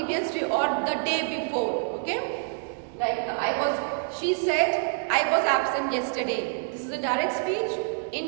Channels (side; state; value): left; silent; 60 dB below the other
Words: day or the day before. Okay? Like she said, I was absent yesterday. This is a direct speech.